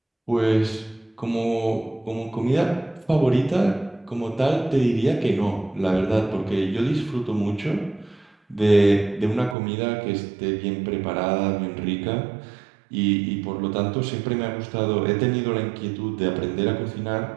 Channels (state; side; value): drops out; left; at 9.6 s